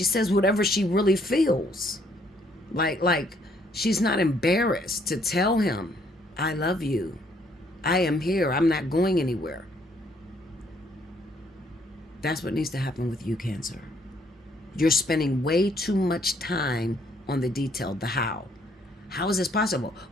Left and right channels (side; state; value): both; normal; correlation 0.67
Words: feels. Like she's not embarrassed to tell him, I love you. I am here. I'm not going anywhere. That's what needs to happen with you, Cancer. You're spending way too much time on the detail, the how. How is this possible?